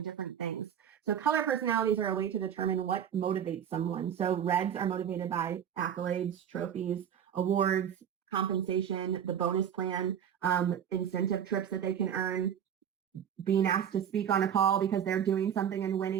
different things. So color personalities are a way to determine what motivates someone. So reds are motivated by accolades, trophies, awards, compensation, the bonus plan, incentive trips that they can earn, being asked to speak on a call because they're doing something and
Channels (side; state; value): left; quieter; 8.9 dB